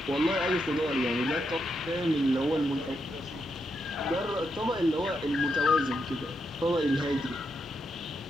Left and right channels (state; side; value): normal; both; correlation 0.82